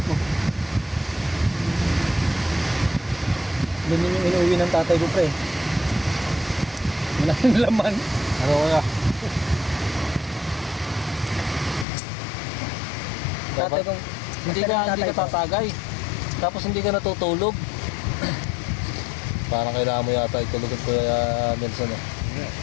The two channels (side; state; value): right; drops out; at 11.9 s